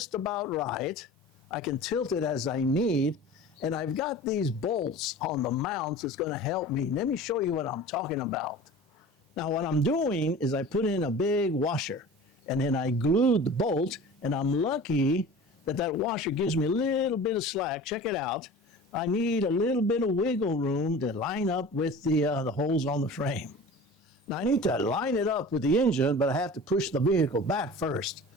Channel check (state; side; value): normal; both; correlation 0.39